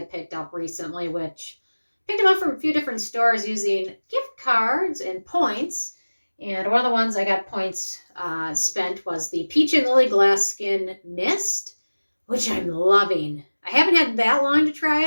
picked up recently, which picked them up from a few different stores using gift cards and points. And one of the ones I got points spent was the Peach and Lily Glass Skin Mist, which I'm loving. I haven't had that long to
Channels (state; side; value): inverted; both; correlation -1.00